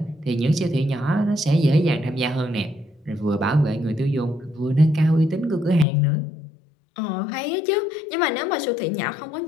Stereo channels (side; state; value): right; drops out; at 5.9 s